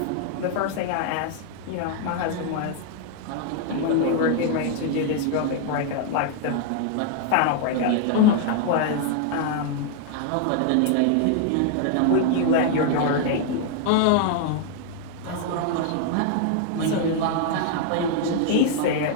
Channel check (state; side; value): different; both; correlation 0.00